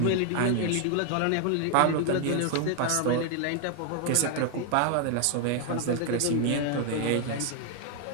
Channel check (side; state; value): both; different; correlation 0.00